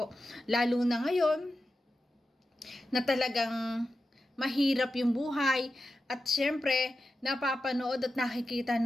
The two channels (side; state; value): both; normal; correlation 0.91